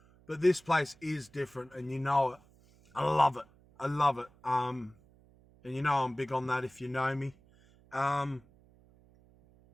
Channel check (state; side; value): noise; right; hum, 28 dB below the sound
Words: But this place is different and you know it. I love it. I love it. And you know I'm big on that if you know me. Yeah,